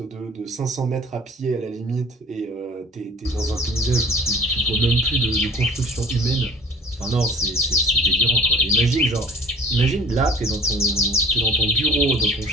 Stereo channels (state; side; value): normal; both; correlation 0.48